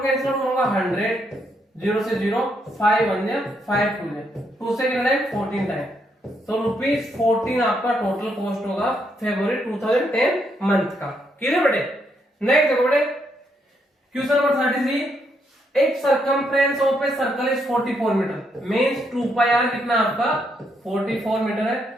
कैंसिल होगा 100, 0 से 0 5 1 जा 5 2 जा 2 से कितना टाइम 14 टाइम, तो ₹14 आपका टोटल कॉस्ट होगा फरवरी 2010 मंथ का। क्लियर बेटे? नेक्स्ट देखो बेटे, क्वेश्चन नंबर 33, एक circumference of a circle is 44 metre, means 2 pi r कितना आपका 44 मीटर है।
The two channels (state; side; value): normal; both; correlation 0.76